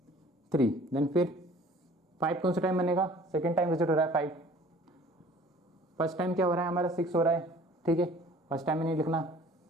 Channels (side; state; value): both; normal; correlation 0.50